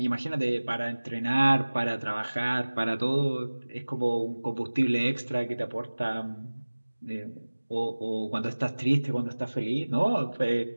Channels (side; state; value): both; inverted; correlation -1.00